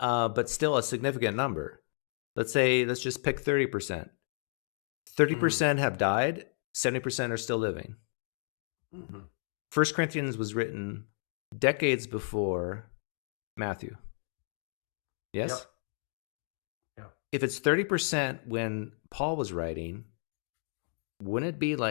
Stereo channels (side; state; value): right; silent; digital silence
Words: still a significant number, let's just pick 30%. 30% have died. 70% are still living. 1 Corinthians was written decades before Matthew. Yes? Yep. If it's 30% when Paul was writing, wouldn't it be